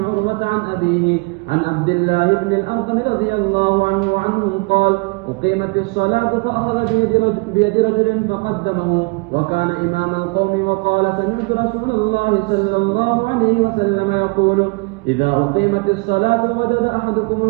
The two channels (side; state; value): left; quieter; 28.0 dB